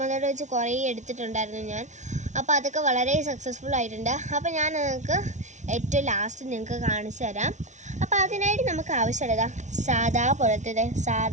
വെച്ച് കുറേ എടുത്തിട്ടുണ്ടായിരുന്നു ഞാൻ. അപ്പോൾ അതൊക്കെ വളരെ സക്സസ്ഫുൾ ആയിട്ടുണ്ട്. അപ്പോൾ ഞാൻ നിങ്ങൾക്ക് ഏറ്റവും ലാസ്റ്റ് നിങ്ങൾക്ക് കാണിച്ചു തരാം. അപ്പോൾ അതിനായിട്ട് നമുക്ക് ആവശ്യമുള്ളത്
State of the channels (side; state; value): left; late; 0.35 ms